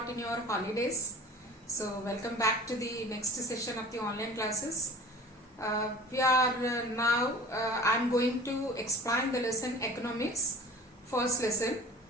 in your holidays. So welcome back to the next session of the online classes. I'm going to explain the lesson economics, first lesson.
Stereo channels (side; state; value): both; normal; correlation 0.42